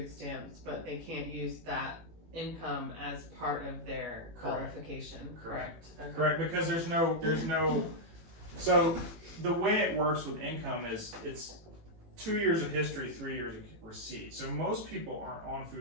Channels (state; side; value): late; left; 18 ms